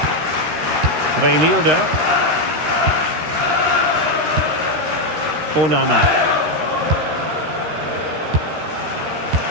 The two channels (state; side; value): late; left; 13 ms